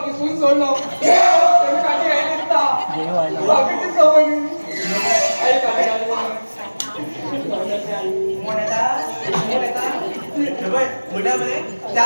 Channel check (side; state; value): both; inverted; correlation -1.00